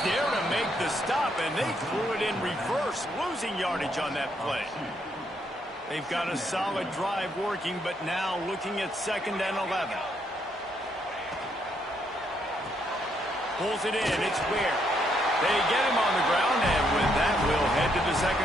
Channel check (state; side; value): normal; both; correlation 0.74